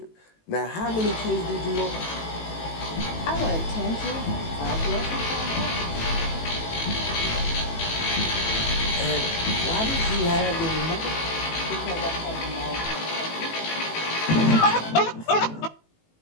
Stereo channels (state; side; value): late; right; 18 ms